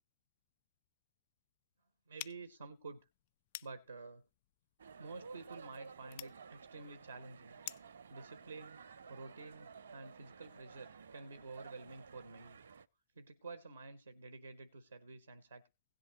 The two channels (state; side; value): inverted; both; correlation -0.70